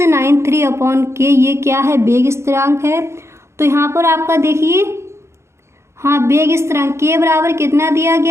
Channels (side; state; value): left; late; 0.13 ms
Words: ये क्या है? वेग स्थिरांक है। तो यहाँ पर आपका देखिए, हाँ, वेग स्थिरांक K बराबर कितना दिया